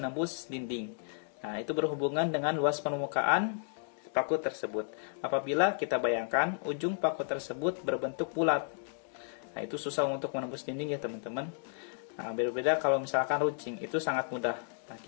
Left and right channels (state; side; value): silent; right; digital silence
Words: dinding. Nah, itu berhubungan dengan luas permukaan paku tersebut. Apabila kita bayangkan ujung paku tersebut berbentuk bulat, nah, itu susah untuk menembus dinding ya teman-teman. Nah, berbeda kalau misalkan runcing, itu sangat mudah. Nah,